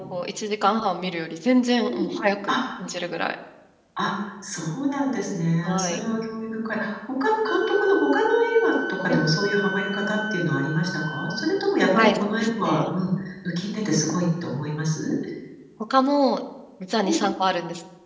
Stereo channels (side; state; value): both; identical; correlation 1.00